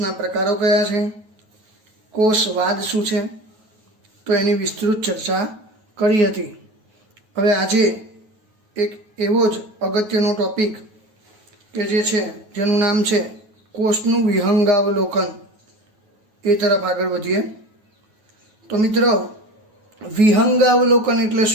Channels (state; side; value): late; left; 9.3 ms